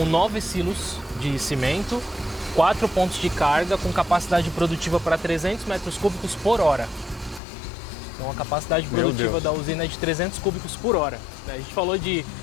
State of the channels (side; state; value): right; drops out; at 7.4 s